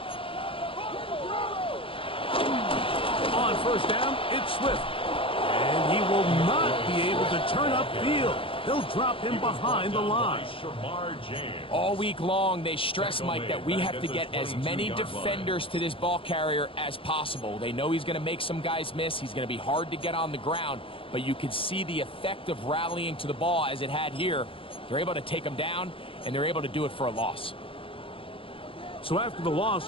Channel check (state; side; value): late; right; 0.26 ms